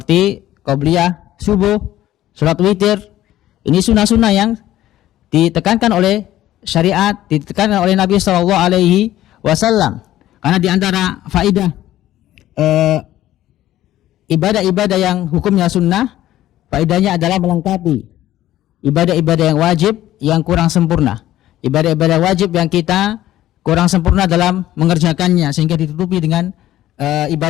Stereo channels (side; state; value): right; quieter; 13.8 dB